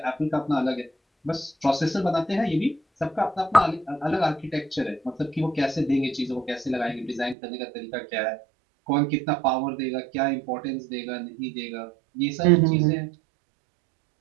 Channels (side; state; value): left; drops out; at 7.4 s